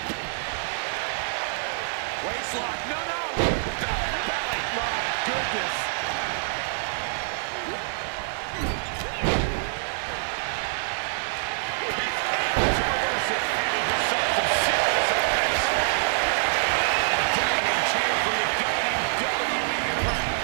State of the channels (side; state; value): left; silent; 60 dB below the other